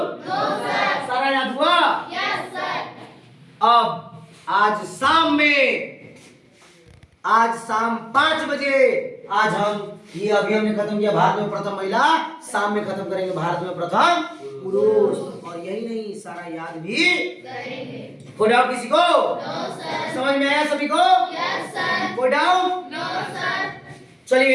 सारा याद हुआ? अब आज शाम 5 बजे आज हम ये अभी हमने खत्म किया भारत में प्रथम महिला, शाम में खत्म करेंगे भारत में प्रथम पुरुष। और यही नहीं, सारा याद भी करेंगे। कोई डाउट किसी को? समझ में आया सभी को? कोई डाउट?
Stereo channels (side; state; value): both; identical; correlation 1.00